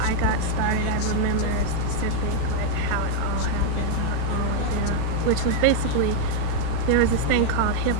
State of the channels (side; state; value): both; different; correlation 0.00